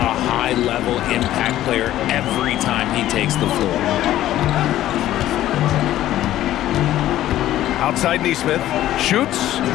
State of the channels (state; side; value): quieter; right; 13.5 dB